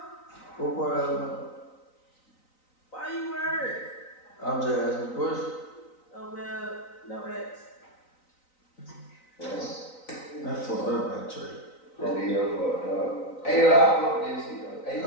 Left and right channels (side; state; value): right; late; 3.9 ms